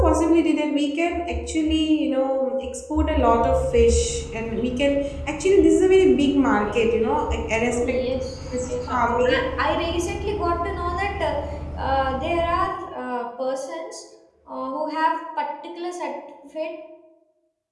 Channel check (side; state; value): both; identical; correlation 1.00